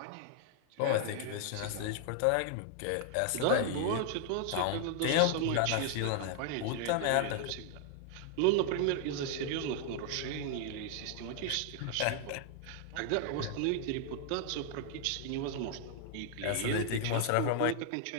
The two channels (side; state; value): both; different; correlation 0.00